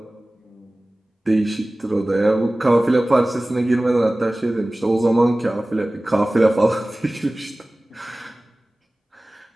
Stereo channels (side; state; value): both; normal; correlation 0.98